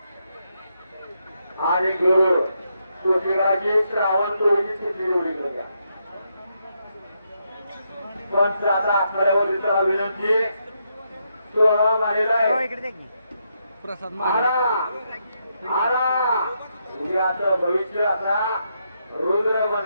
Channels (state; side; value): inverted; both; correlation -0.80